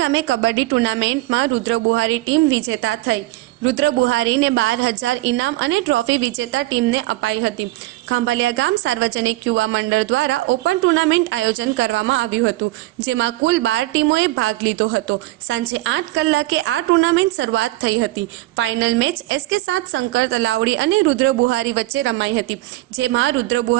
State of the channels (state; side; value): quieter; left; 18.3 dB